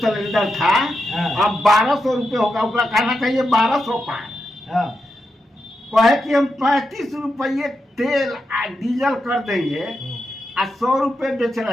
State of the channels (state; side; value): normal; both; correlation 0.86